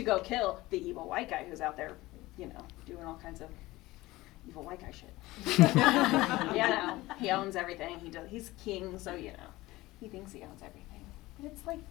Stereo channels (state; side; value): quieter; right; 19.0 dB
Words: go kill the evil white guy who's out there, you know, doing all kinds of evil white guy shit. You know, he owns everything. He's king, so you know, he thinks he owns everything. But it's like,